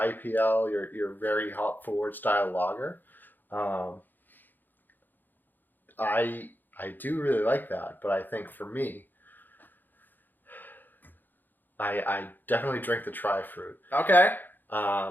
your very hop forward style lager. I do really like that, but I think for me, I definitely drink the Tri-Fruit. Okay.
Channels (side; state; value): right; late; 0.088 ms